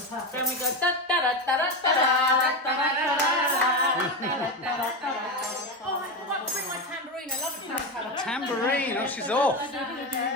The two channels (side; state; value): both; normal; correlation 0.16